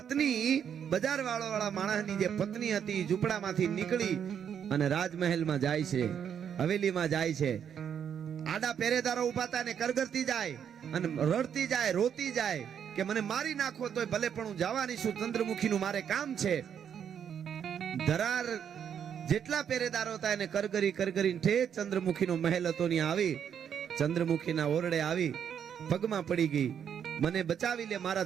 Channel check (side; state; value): left; quieter; 8.3 dB